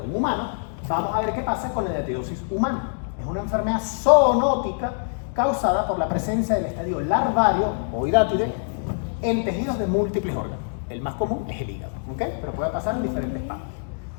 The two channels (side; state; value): right; silent; digital silence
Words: un humano, vamos a ver qué pasa con la diatidosis humana. Es una enfermedad zoonótica causada por la presencia del estadio larvario o hidátide en tejidos de múltiples órganos. El más común es el hígado, ¿ok? Pero puede pasar en diferentes partes.